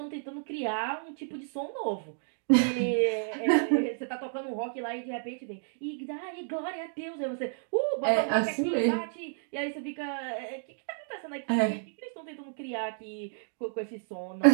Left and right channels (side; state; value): left; silent; digital silence